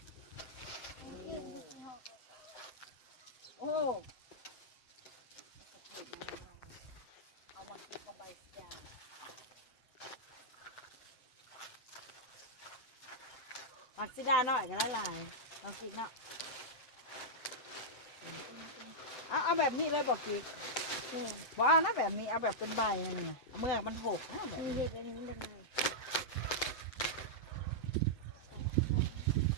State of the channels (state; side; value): late; right; 7.8 ms